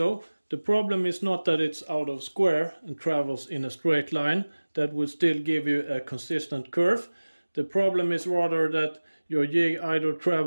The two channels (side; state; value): both; inverted; correlation -1.00